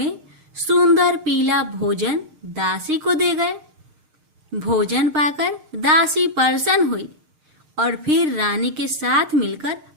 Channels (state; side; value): late; left; 6.5 ms